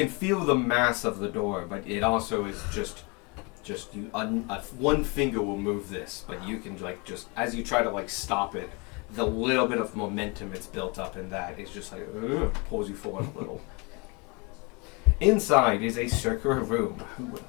feel the mass of the door, but it also is just you. One finger will move this, but you can just as you try to stop it, the little bit of momentum it's built up in that is just pulls you forward a little. Inside is a circular room. Who would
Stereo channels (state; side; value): quieter; right; 29.8 dB